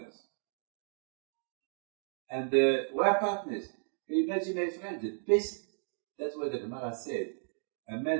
And we are partners. Can you imagine, my friend, the best, that's what the Gemara said, a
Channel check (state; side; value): silent; left; 55 dB below the other